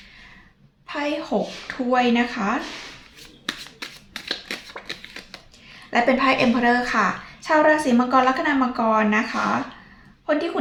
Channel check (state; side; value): identical; both; correlation 1.00